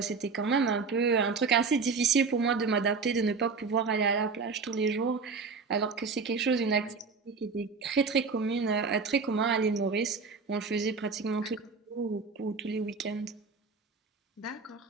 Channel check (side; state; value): left; quieter; 4.8 dB